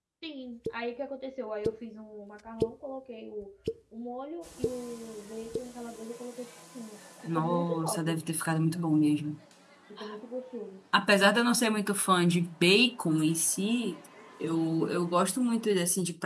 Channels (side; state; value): both; identical; correlation 1.00